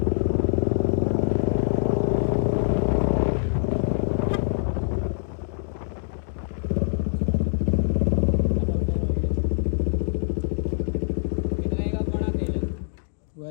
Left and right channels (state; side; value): silent; right; digital silence